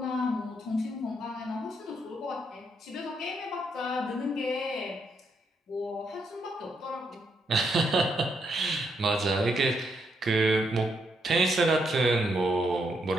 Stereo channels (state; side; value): normal; both; correlation 0.77